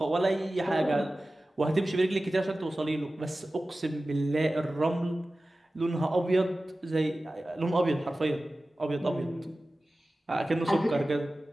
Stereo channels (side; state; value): both; normal; correlation 0.96